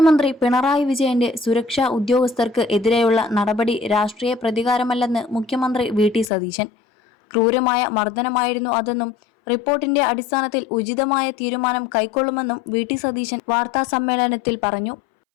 പിണറായി വിജയന്റെ സുരക്ഷാ ഉദ്യോഗസ്ഥർക്ക് എതിരെയുള്ള നടപടി രാഷ്ട്രീയ പ്രതികാരമല്ലെന്ന് മുഖ്യമന്ത്രി വി.ടി. സതീശൻ. ക്രൂരമായ മർദ്ദനമായിരുന്നു അതെന്നും റിപ്പോർട്ടിന്റെ അടിസ്ഥാനത്തിൽ ഉചിതമായ തീരുമാനം കൈക്കൊള്ളുമെന്നും വി.ടി. സതീശൻ വാർത്താസമ്മേളനത്തിൽ പറഞ്ഞു.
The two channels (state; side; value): drops out; right; at 6.3 s